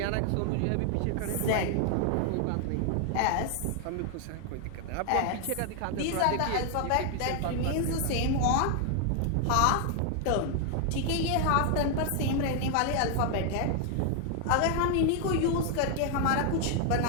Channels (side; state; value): both; different; correlation 0.00